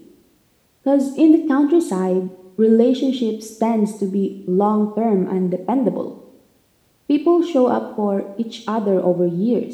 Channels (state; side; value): identical; both; correlation 1.00